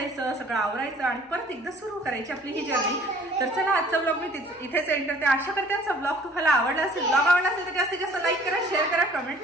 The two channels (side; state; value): both; normal; correlation 0.54